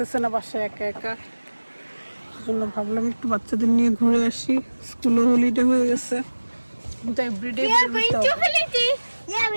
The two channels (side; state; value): both; inverted; correlation -1.00